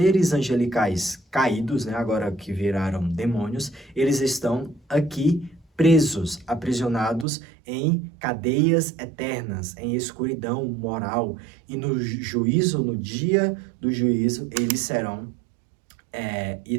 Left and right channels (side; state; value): left; drops out; at 7.2 s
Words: angelicais caídos, né, agora que viraram demônios, eles estão aqui presos, aprisionados em cadeias eternas, em escuridão moral. E no juízo, no dia do juízo, eles